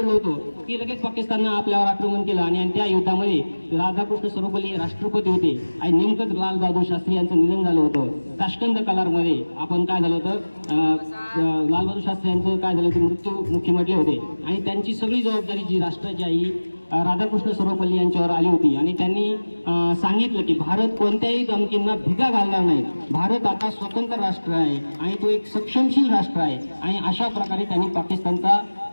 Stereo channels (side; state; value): both; inverted; correlation -1.00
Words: होतो की लगेच पाकिस्ताननं आपल्यावर आक्रमण केलं आणि त्या युद्धामध्ये राधाकृष्ण सर्वपल्ली राष्ट्रपती होते आणि नेमकंच लाल बहादूर शास्त्री यांचं निधन झालं होतं. ताश्कंद कलारमध्ये आपण काय झालं होतं, लाल बहादूर शास्त्री यांचं काय झालं ते मृत्युमुखी म्हटले होते आणि त्यांची सगळी जबाबदारी जी राष्ट्राची आई राधाकृष्ण सर्वपल्ली यांच्यावर आली होती आणि त्यांनी सांगितलं की भारत कोणत्याही धमकींना भिगा घालणार नाही. भारत आता स्वतंत्र राष्ट्र आहे आणि तो एक सक्षमशील राष्ट्र आहे आणि अशा प्रकारे त्यांनी पाकिस्तानचा